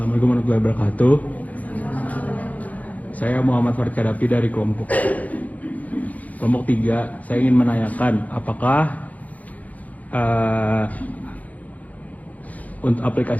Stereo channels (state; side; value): late; right; 0.074 ms